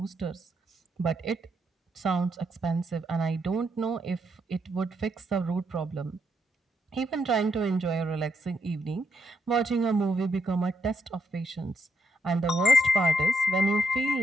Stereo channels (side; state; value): both; normal; correlation 0.77